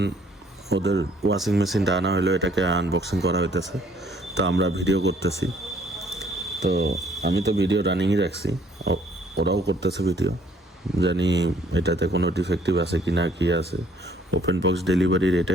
ওদের ওয়াশিং মেশিনটা আনা হলো, এটাকে আনবক্সিং করা হইতেছে, তো আমরা ভিডিও করতেছি। তো আমি তো ভিডিও রানিংই রাখছি, ওরাও করতেছে ভিডিও, জানি এটাতে কোনো ডিফেক্টিভ আছে কি না, কি আছে। ওপেন বক্স ডেলিভারির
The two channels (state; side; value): normal; both; correlation 0.62